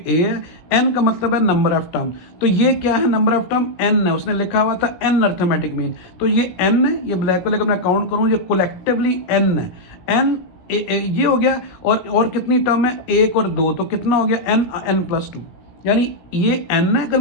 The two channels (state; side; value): late; right; 17 ms